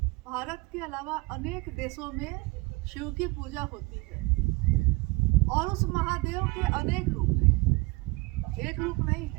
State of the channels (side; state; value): left; quieter; 24.3 dB